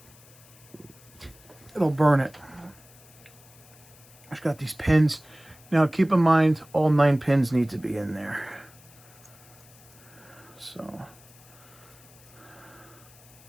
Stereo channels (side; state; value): left; noise; hiss, 24 dB below the sound